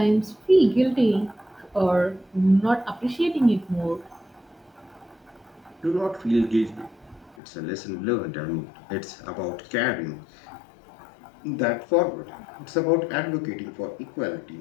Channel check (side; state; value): right; drops out; at 7.4 s